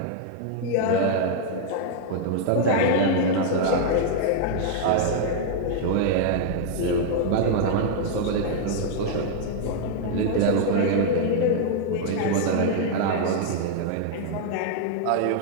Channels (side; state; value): both; different; correlation -0.01